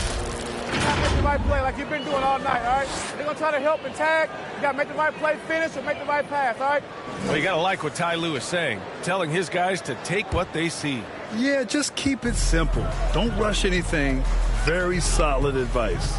the right play like you've been doing all night, all right? They're going to try to help and tag. You got to make the right play, finish, and make the right pass, all right? Well, you got to like what Ty Lue is saying, telling his guys to take what they see. Yeah, just keep it simple. Don't rush anything. Very solid advice.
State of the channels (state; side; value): identical; both; correlation 1.00